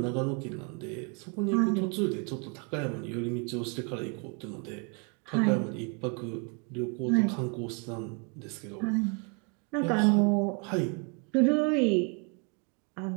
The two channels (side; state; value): left; quieter; 34.2 dB